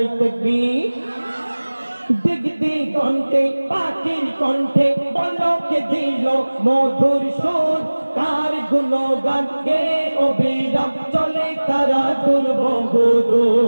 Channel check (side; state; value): both; inverted; correlation -1.00